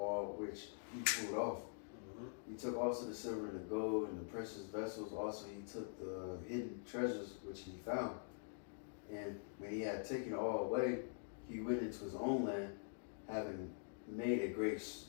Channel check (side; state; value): right; silent; digital silence